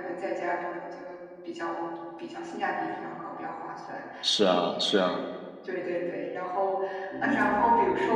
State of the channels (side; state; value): both; identical; correlation 1.00